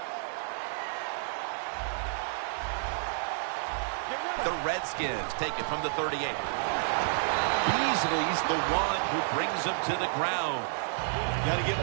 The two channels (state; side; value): silent; left; 57 dB below the other